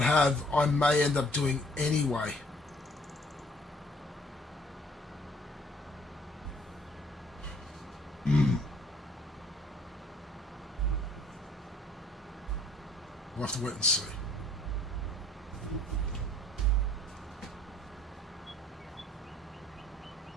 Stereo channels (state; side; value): normal; both; correlation 0.59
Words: have, I may end up doing anyway. We'll have to wait and see.